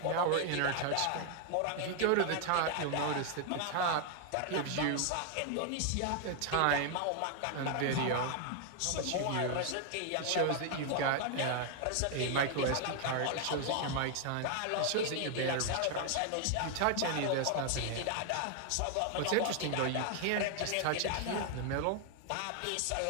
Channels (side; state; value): both; different; correlation 0.00